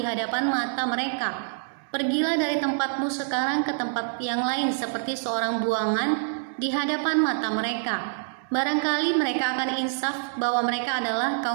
hadapan mata mereka. Pergilah dari tempatmu sekarang ke tempat yang lain seperti seorang buangan di hadapan mata mereka. Barangkali mereka akan insaf bahwa mereka adalah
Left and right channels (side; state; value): left; silent; digital silence